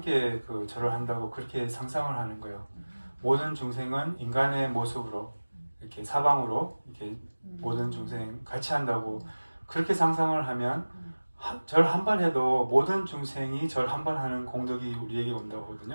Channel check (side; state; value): both; inverted; correlation -1.00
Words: 그 절을 한다고 그렇게 상상을 하는 거예요. 모든 중생은 인간의 모습으로 이렇게 사방으로 이렇게 모든 중생 같이 한다고 그렇게 상상을 하면 절 한 번 해도 모든 중생이 절 한 번 하는 공덕이 우리에게 온다고